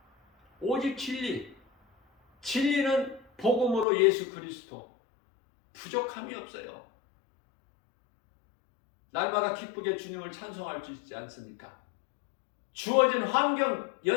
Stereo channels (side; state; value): right; drops out; at 3.9 s